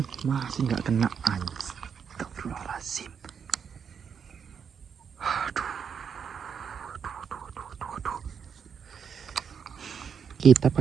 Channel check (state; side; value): quieter; left; 7.0 dB